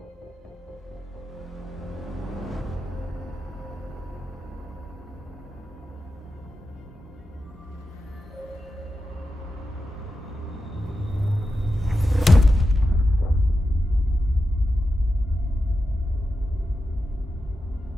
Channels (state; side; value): normal; both; correlation 0.90